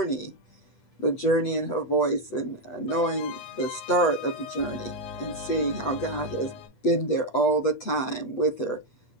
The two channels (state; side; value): late; right; 7.9 ms